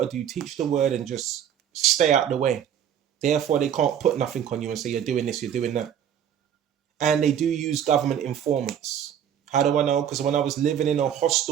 to do, teach the word, and just stay out the way. Therefore, they can't put nothing on you and say you're doing this, you're doing that. And they do use government informants. How do I know? Because when I was living in a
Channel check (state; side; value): quieter; left; 9.3 dB